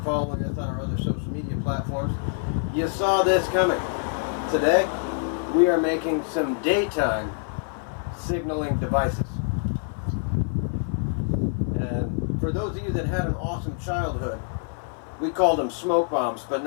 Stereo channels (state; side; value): silent; right; 55 dB below the other